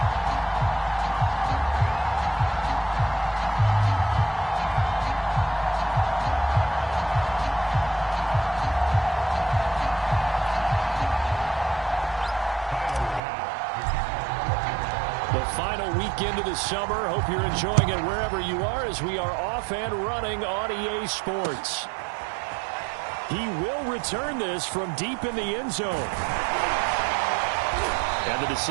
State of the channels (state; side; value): drops out; left; at 13.2 s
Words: Into the summer. Hope you're enjoying it wherever you are as we are off and running on EA Sports. He will return this from deep in the end zone. And the